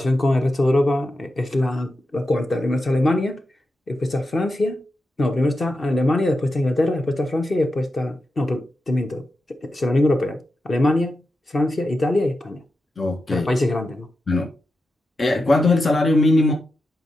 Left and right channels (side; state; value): both; normal; correlation 0.89